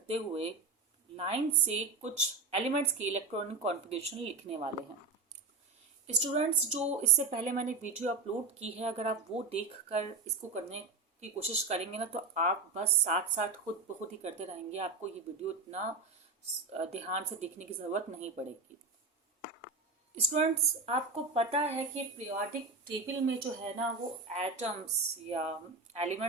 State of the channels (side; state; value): left; quieter; 3.9 dB